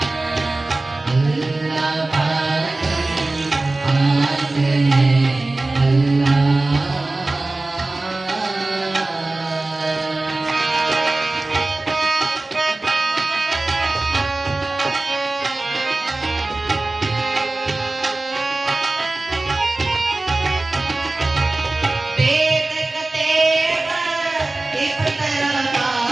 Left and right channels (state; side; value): quieter; left; 3.1 dB